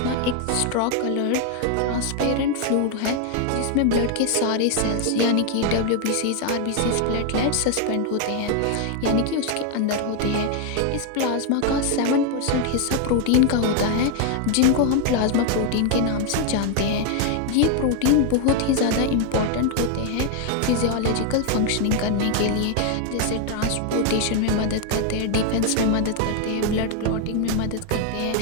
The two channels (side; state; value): both; different; correlation 0.00